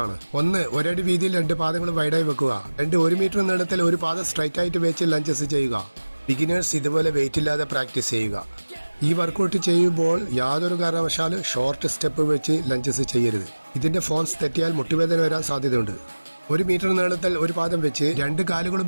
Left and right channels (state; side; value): inverted; both; correlation -1.00